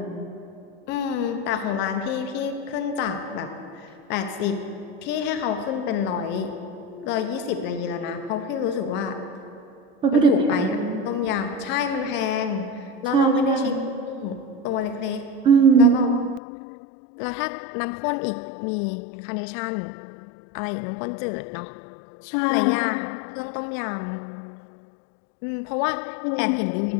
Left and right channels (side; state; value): right; drops out; at 16.4 s